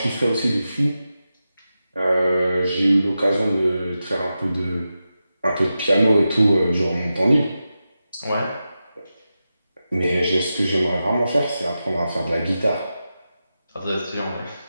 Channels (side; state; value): both; inverted; correlation -0.91